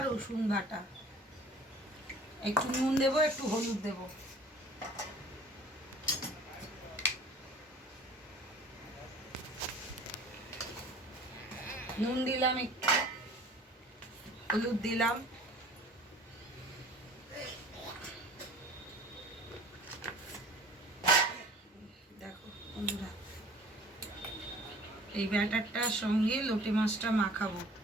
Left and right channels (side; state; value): both; normal; correlation 0.48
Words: রসুন বাটা, একটু নুন দেবো, একটু হলুদ দেবো। নুন দিলাম, একটু হলুদ দিলাম, দেখো বন্ধুরা এই ব্যাটারটার সঙ্গে লোটে মাছটা মাখাবো।